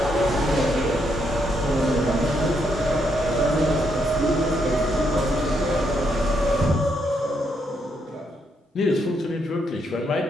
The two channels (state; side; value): normal; both; correlation 0.77